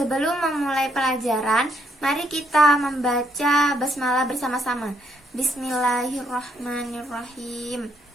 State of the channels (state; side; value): normal; both; correlation 0.73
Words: memulai pelajaran, mari kita membaca basmalah bersama-sama. Bismillahirrahmanirrahim.